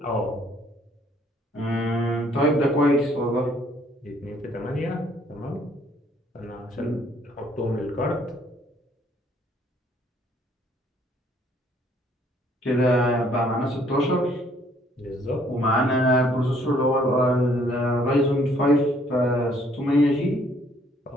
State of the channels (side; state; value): both; normal; correlation 0.63